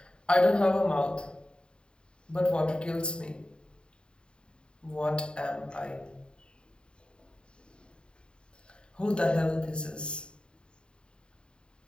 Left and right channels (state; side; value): late; right; 0.051 ms